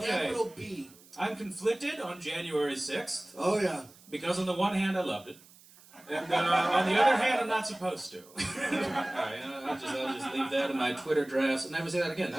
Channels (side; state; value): right; noise; hiss, 24 dB below the sound